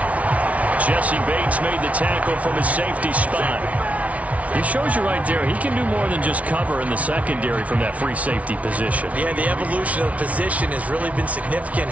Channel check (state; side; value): late; left; 0.067 ms